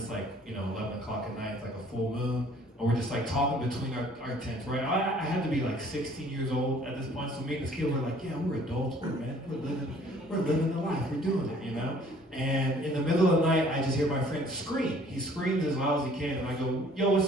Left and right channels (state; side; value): normal; both; correlation 0.55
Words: like 11 o'clock at night. It's like a full moon. And we're just like talking between our tents, right? I had to be like 16 years old at this point. So me and this kid were like, yeah, we're adults, we're living the life, we're doing it, And in the middle of the night, I just hear my friend scream. He screams as loud as he can, and I go, "Yo,